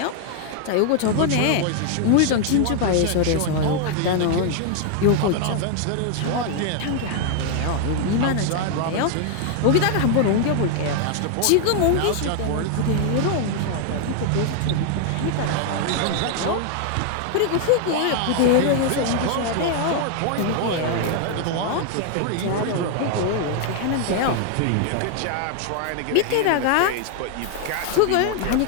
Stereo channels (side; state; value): both; different; correlation 0.00